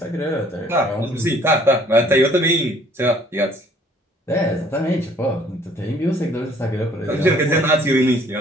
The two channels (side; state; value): both; normal; correlation 0.58